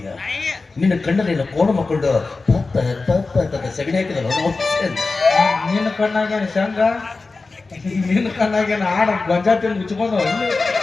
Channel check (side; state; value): right; quieter; 3.8 dB